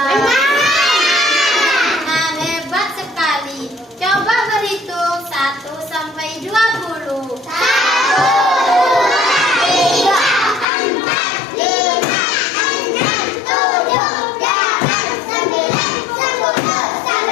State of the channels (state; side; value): drops out; right; at 10.7 s